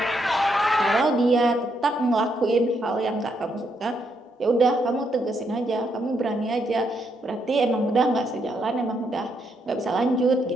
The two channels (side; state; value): both; normal; correlation 0.77